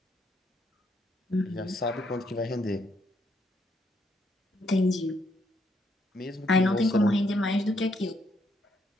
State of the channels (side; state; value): both; normal; correlation 0.74